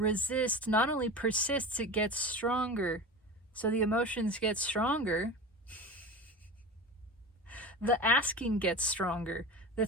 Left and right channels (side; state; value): both; normal; correlation 0.30